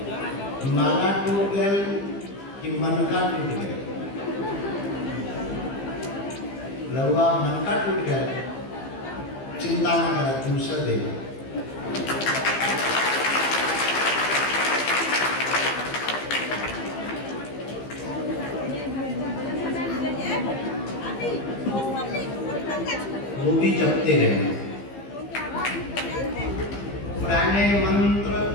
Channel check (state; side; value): late; right; 15 ms